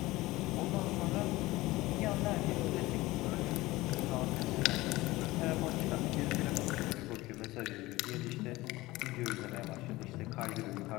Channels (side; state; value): right; quieter; 19.2 dB